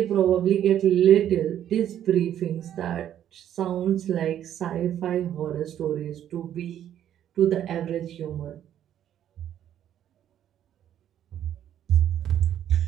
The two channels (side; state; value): left; quieter; 10.7 dB